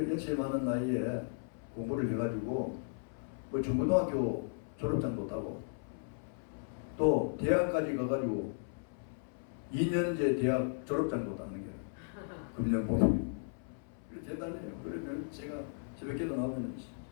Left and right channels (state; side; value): silent; right; 54 dB below the other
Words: 연세 많은 나이에 공부를 해가지고 뭐 중고등학교 졸업장도 따고 또 대학까지 가가지고 2년제 대학 졸업장도 따는 게 금년봉 대단해요. 그러면 제가 새벽기도 나오면